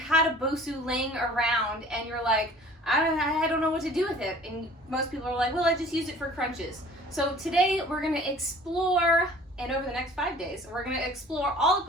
a BOSU laying around and you're like, I don't know what to do with it. And most people are like, well, I just use it for crunches. So today we're gonna explore, and over the next 5 days, we're gonna explore all the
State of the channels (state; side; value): normal; both; correlation 0.49